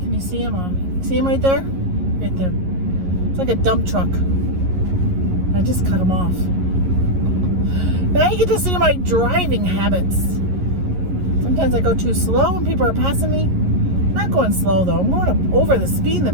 Can you see him? See him right there? Right there. It's like a dump truck. I just cut him off. Now you get to see my driving habits. Sometimes I go too slow and people are passing me. I'm not going slow though. I'm going up over the speed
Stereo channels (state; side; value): late; left; 11 ms